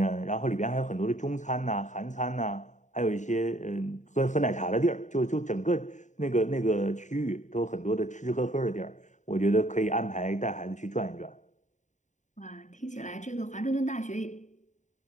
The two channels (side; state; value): right; late; 0.35 ms